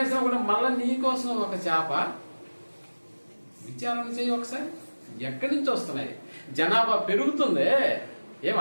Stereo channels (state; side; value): inverted; both; correlation -1.00